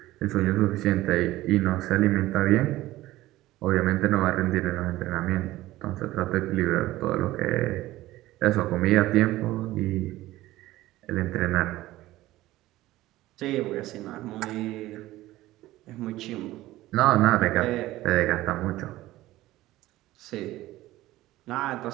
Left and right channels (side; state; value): left; quieter; 16.6 dB